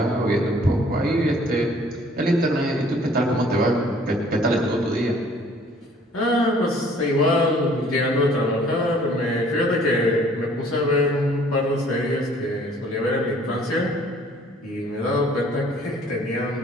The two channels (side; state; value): both; normal; correlation 0.56